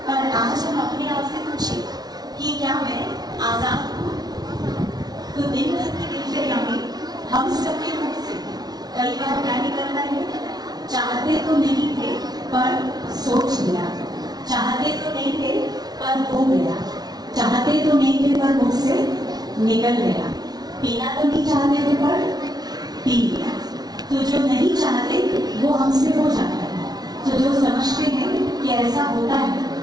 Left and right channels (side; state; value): left; late; 0.19 ms